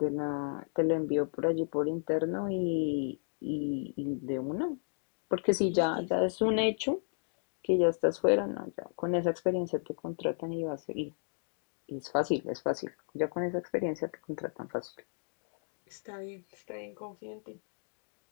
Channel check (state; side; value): silent; right; digital silence